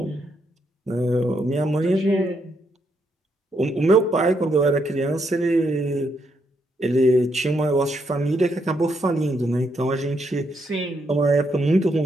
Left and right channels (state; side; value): normal; both; correlation 0.77